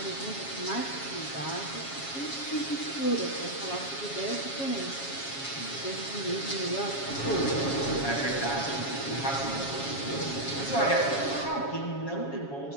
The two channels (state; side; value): late; right; 7.2 ms